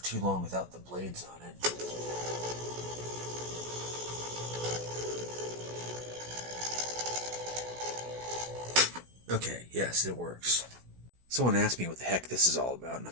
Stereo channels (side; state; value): left; late; 16 ms